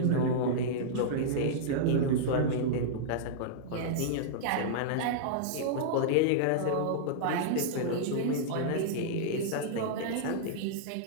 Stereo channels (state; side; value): different; both; correlation -0.02